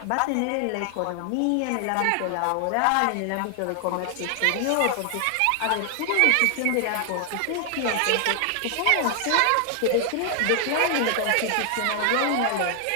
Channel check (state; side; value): different; both; correlation 0.00